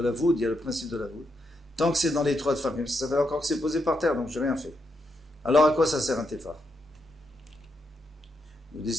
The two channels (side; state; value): both; normal; correlation 0.81